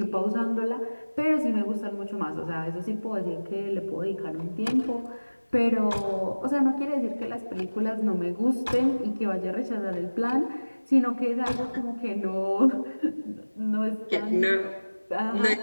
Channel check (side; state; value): both; inverted; correlation -1.00